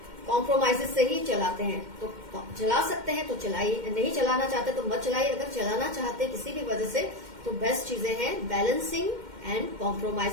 कॉम्प्रोमाइजेस से ही चलाते हैं, तो चला सकते हैं तो चलाइए, नहीं चलाना चाहते तो मत चलाइए। अगर चलाना चाहते किसी भी वजह से, तो बेस्ट चीजें हैं balancing and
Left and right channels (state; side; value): late; left; 2.1 ms